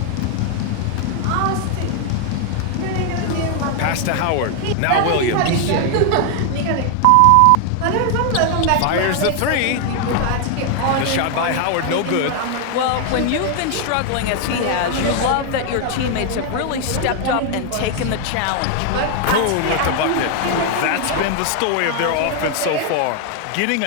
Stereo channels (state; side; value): different; both; correlation 0.00